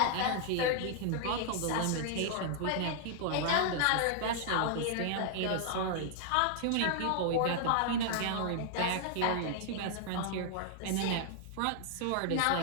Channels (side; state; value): both; different; correlation -0.01